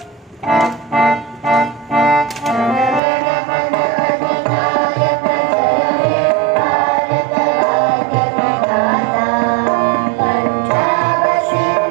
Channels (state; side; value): drops out; left; at 3.0 s